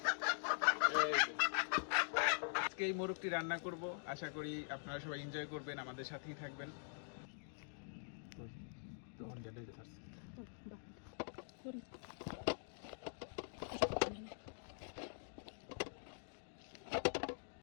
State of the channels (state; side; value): silent; right; digital silence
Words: আজকে এই মোরগটি রান্না করব। আশা করি আপনারা সবাই এনজয় করবেন, আমাদের সাথেই থাকবেন।